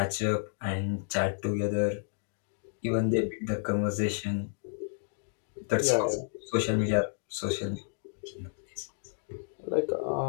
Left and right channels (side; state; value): right; silent; digital silence